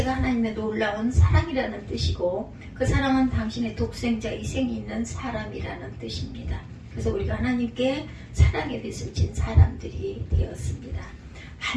하나님의 놀라운 사랑이라는 뜻이고 그 사랑은 당신의 독생자 희생이 있는 사람이라는 뜻입니다. 그래서 우리가 하나님께 사랑의 빚을 진 사람들이 되었습니다.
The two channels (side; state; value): both; identical; correlation 1.00